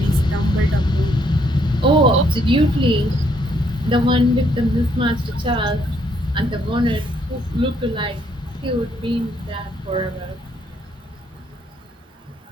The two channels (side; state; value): both; normal; correlation 0.71